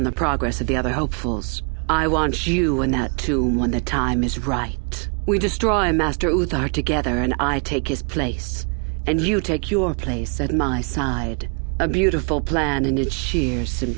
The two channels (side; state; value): left; quieter; 37.5 dB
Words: the progress of the other hopefuls. I want you in that tomb when the time is right. We destroy Master Uthar together and I take his place. And you take your place at my side. A beautiful plan in its sheer